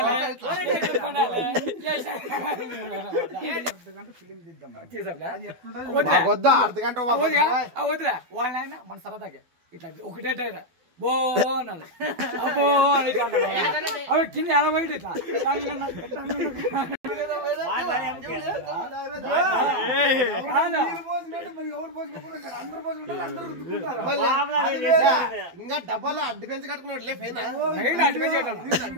వద్దురా వాళ్ళైనా మన సరదాగా ఇట్లా ఒకటే బో అన్నాడు అబ్బో అని అవి కింద ఎలా పోయి ఇట్లా ఇంకా డబ్బాలో అడ్డు పెంచి కట్టుకున్నాడు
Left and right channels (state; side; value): late; left; 12 ms